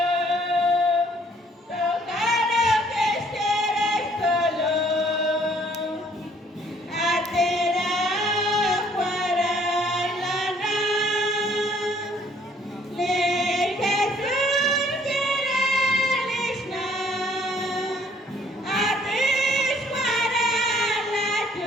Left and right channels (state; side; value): normal; both; correlation 0.61